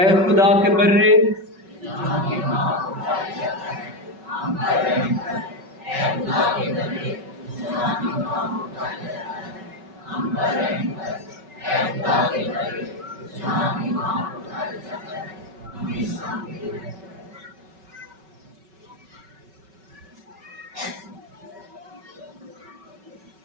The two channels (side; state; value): left; late; 5.3 ms